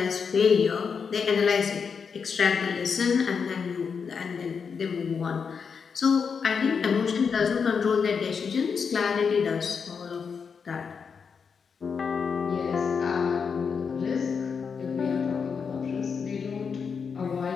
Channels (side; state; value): right; quieter; 6.0 dB